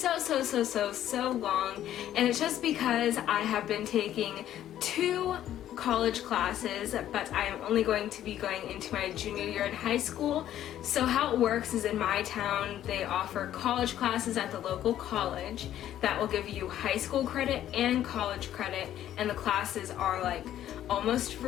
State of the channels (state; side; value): quieter; right; 11.8 dB